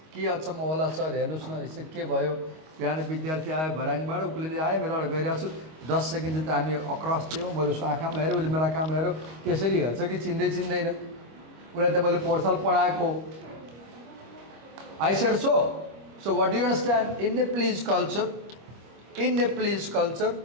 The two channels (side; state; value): left; late; 25 ms